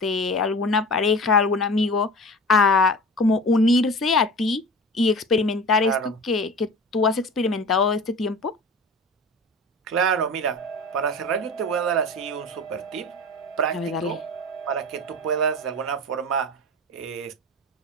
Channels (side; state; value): both; normal; correlation 0.35